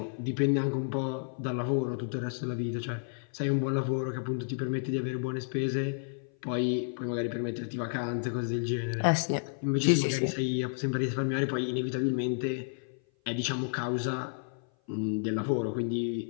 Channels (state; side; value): silent; right; 55 dB below the other